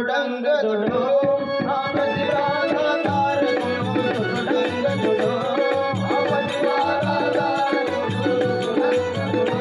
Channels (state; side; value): identical; both; correlation 1.00